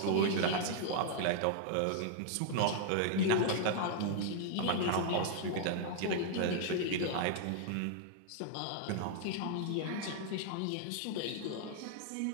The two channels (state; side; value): different; both; correlation -0.01